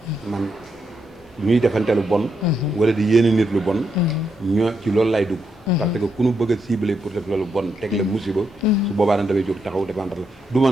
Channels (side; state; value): both; normal; correlation 0.81